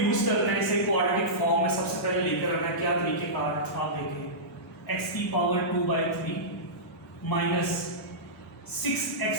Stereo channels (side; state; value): both; normal; correlation -0.16